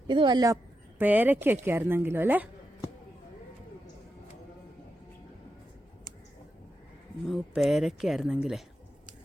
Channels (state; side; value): normal; both; correlation 0.87